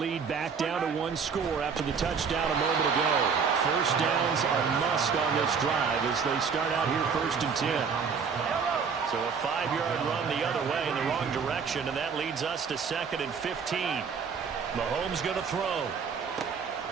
back down to 1 score after the touchdown a moment ago. First downs are must on this drive as they start out here first and 10. So a 5-yard run the other way in the wrong direction, and that leads us to 2nd and 15. Mahomes going to throw.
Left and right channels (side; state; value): left; quieter; 6.0 dB